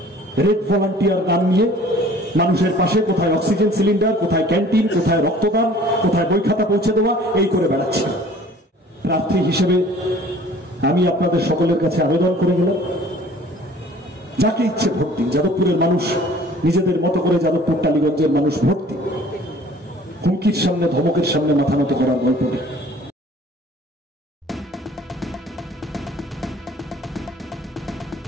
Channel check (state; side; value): normal; both; correlation 0.50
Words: রেড ভলান্টিয়ার গান নিয়ে মানুষের পাশে কোথায় অক্সিজেন সিলিন্ডার, কোথায় ক্যান্টিন, কোথায় রক্তদান, কোথায় বই খাতা পৌঁছে দেওয়া, এই করে বেড়াচ্ছে। প্রার্থী হিসেবে আমি আপনাদের সকলের কাছে আবেদন করে গেলাম, যাকে ইচ্ছে ভোট দিন। যাদবপুরের মানুষ নিজেদের মতো করে, যাদবপুর টালিগঞ্জের মানুষ ভোট দিন। হুমকির সামনে, ধমকের সামনে মাথা নত করার গল্প নেই।